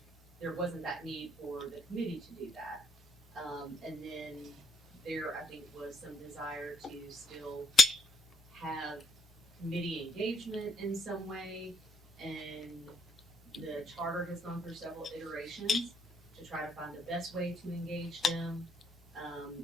there wasn't that need for the committee to do that. And then there, I think, was some desire to still have committee engagement in some way, and the charter has gone through several iterations to try to find the best way to engage them.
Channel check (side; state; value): both; normal; correlation 0.71